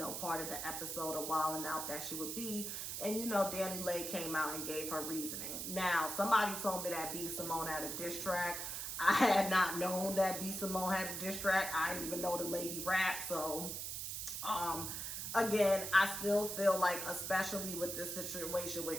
part of the episode of Wildin' Out that she would be. And, Dani Leigh came out and gave her reasoning. Now, somebody told me that B. Simone had a diss track. I had not known that B. Simone had a diss track. I didn't even know the lady rap. So, again, I still feel like, especially with this situation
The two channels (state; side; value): noise; right; hiss, 4 dB below the sound